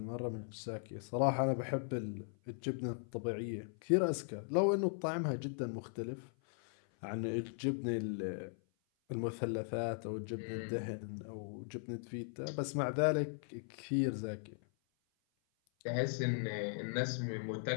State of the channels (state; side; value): silent; right; 52 dB below the other